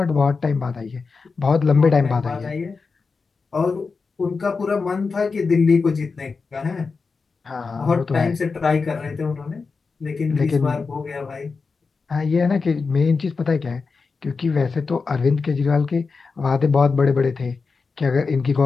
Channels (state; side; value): quieter; right; 4.6 dB